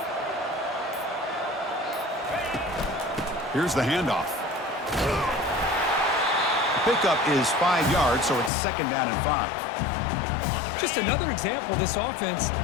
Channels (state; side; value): drops out; right; at 8.5 s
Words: Here's the handoff. Pickup is 5 yards, so it's 2nd down and 5. Just another example of this offense,